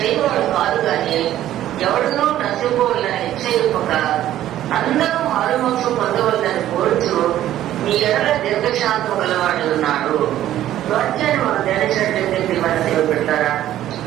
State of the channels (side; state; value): left; quieter; 12.8 dB